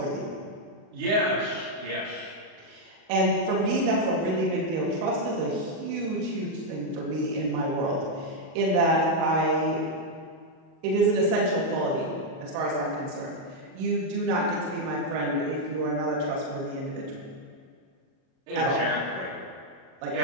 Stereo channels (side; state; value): left; late; 37 ms